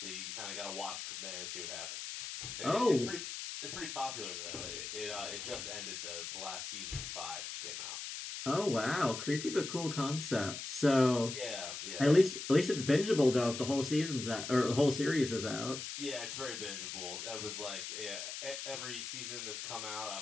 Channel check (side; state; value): left; noise; hiss, 7 dB below the sound